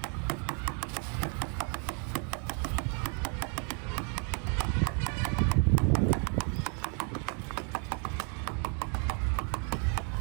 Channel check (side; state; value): left; quieter; 39.9 dB